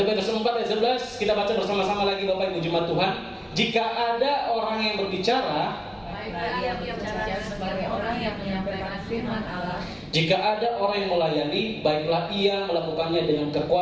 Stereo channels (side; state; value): both; identical; correlation 1.00